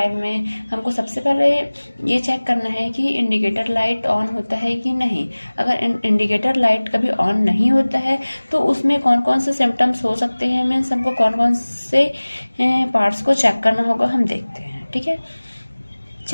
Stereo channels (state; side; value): inverted; both; correlation -1.00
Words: में हमको सबसे पहले ये चेक करना है कि इंडिकेटर लाइट ऑन होता है कि नहीं। अगर इंडिकेटर लाइट कभी ऑन नहीं होता है तो उसमें कौन कौन से सिम्टम्स हो सकते हैं, मीन्स हमको कौन कौन से पार्ट्स को चेक करना होगा, हम देखते हैं। ठीक है,